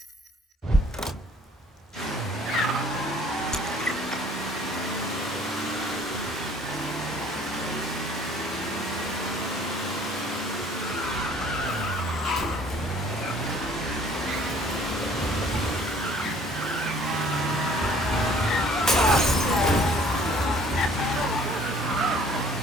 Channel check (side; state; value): both; normal; correlation 0.55